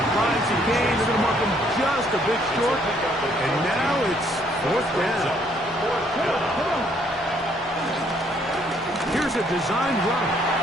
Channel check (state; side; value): normal; both; correlation 0.66